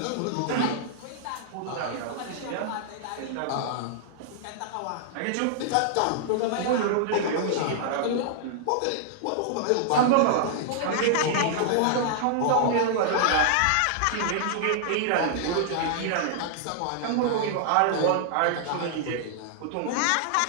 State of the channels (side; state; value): both; different; correlation -0.01